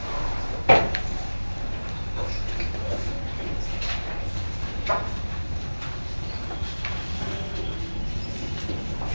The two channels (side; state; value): both; inverted; correlation -1.00